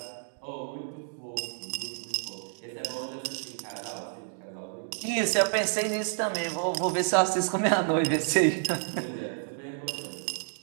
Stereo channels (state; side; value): silent; left; digital silence